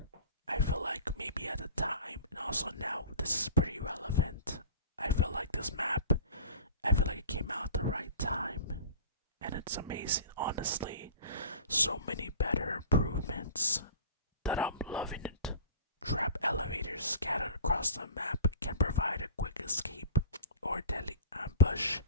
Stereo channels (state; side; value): inverted; both; correlation -0.39